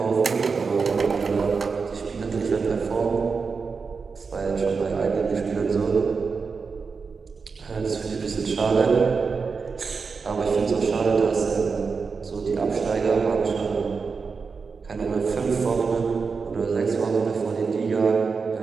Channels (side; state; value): left; quieter; 5.0 dB